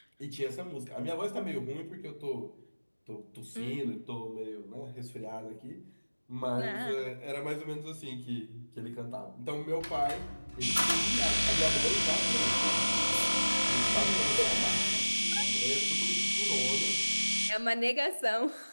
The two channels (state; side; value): inverted; both; correlation -1.00